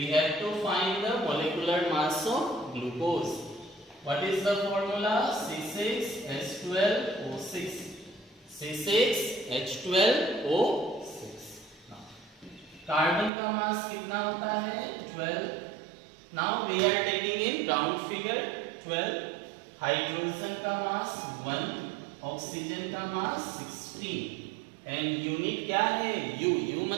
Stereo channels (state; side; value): drops out; left; at 13.3 s